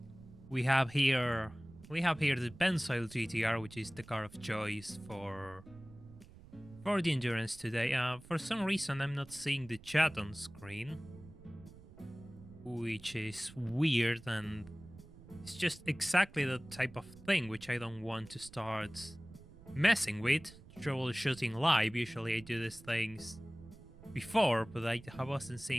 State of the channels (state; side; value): noise; right; rumble, 20 dB below the sound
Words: We have here the Pensoil GTR, which is the car of choice for the endurance today. For some reason I'm not seeing the chat on screen, which is weird, and it's just exactly the type of thing which I don't want to start messing with. Troubleshooting live, usually I do these things before, but I wasn't